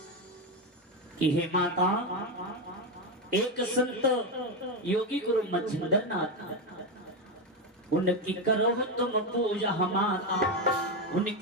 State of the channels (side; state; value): both; normal; correlation 0.11